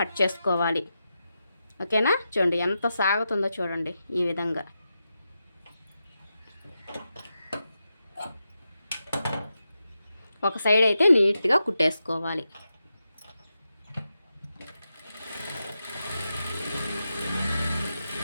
చేసుకోవాలి. ఓకేనా? చూడండి ఎంత సాగుతుందో చూడండి. ఈ విధంగా ఒక సైడ్ అయితే నీట్గా కుట్టేసుకోవాలి.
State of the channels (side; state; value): both; inverted; correlation -0.88